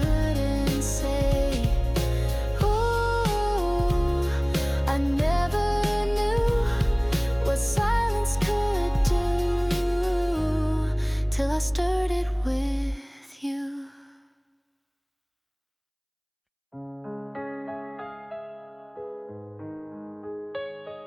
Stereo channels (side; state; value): both; identical; correlation 1.00